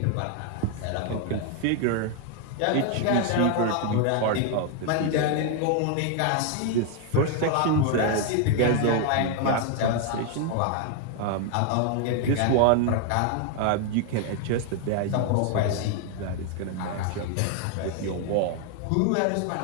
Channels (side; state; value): both; different; correlation 0.00